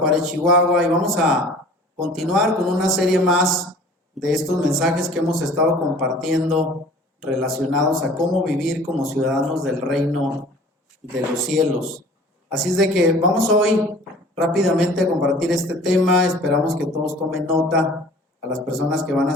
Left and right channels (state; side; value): normal; both; correlation 0.47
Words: Chihuahua. Y vamos a continuar con una serie más de estos mensajes que hemos estado compartiendo relacionados a cómo vivir como ciudadanos del reino de los cielos. Así es de que vamos hoy rápidamente a compartir este tema. Esperamos que todos tomen nota. A las personas que van